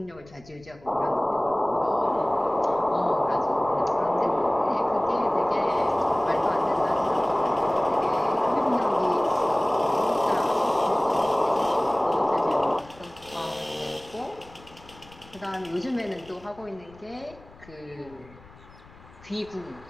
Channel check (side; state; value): left; noise; rumble, 23 dB below the sound